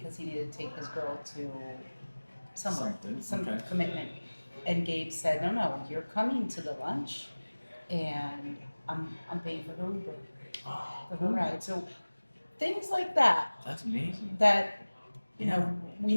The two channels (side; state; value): both; inverted; correlation -1.00